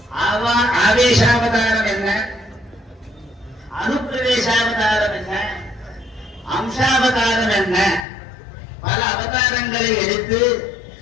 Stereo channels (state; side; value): drops out; right; at 8.1 s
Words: ஆவேசாவதாரம் என்ன, அனுப்பிரவேசாவதாரம் என்ன, அம்சாவதாரம் என்ன, பல அவதாரங்களை எடுத்து